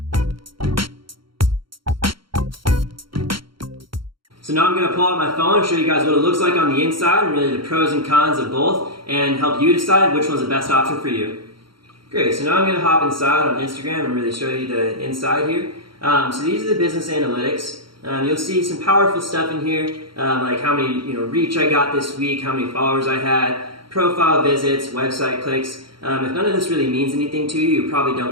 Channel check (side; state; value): left; late; 0.73 ms